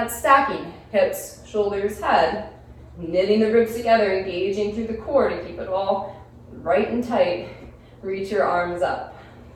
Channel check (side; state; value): both; identical; correlation 1.00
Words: stacking. Hips, shoulders, head. Knitting the ribs together, engaging through the core to keep it all right and tight. Reach your arms up.